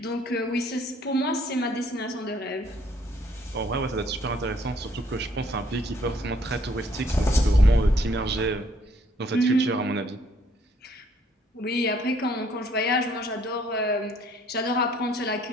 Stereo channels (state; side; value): normal; both; correlation 0.64